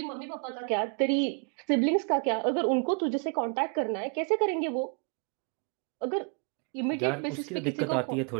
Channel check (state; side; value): quieter; left; 39.1 dB